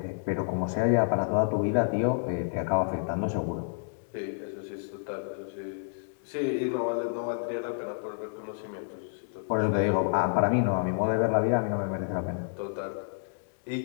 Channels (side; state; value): right; silent; digital silence